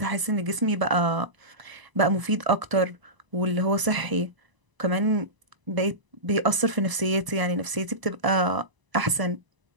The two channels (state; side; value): late; left; 1.0 ms